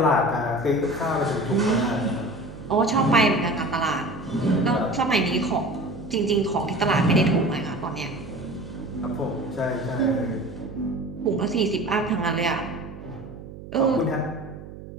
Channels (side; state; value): right; noise; hum, 14 dB below the sound